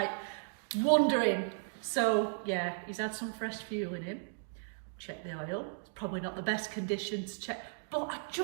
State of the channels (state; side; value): silent; left; digital silence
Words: wondering. So yeah, he's had some fresh fuel in him. Check the oil. It's probably not the best condition to check, but I